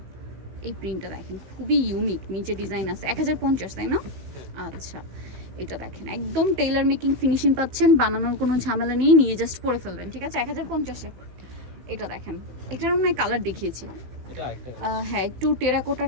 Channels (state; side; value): late; left; 16 ms